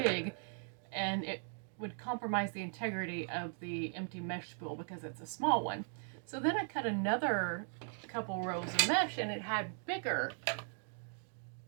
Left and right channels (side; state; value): left; silent; 52 dB below the other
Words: and it would compromise the integrity of the empty mesh spool because it's a small one. So then I cut another couple rows of mesh and it had bigger